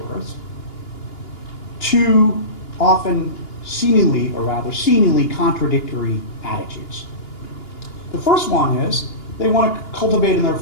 two often seemingly contradictory attitudes. The first one is they want to cultivate in their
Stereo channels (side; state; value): right; late; 2.9 ms